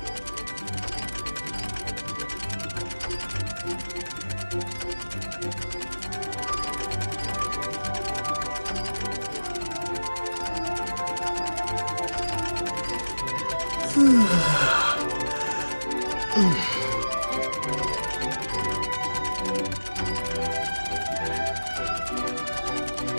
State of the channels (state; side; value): inverted; both; correlation -1.00